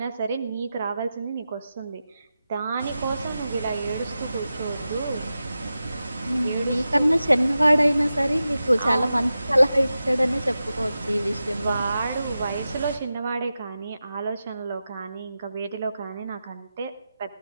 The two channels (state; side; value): inverted; both; correlation -0.93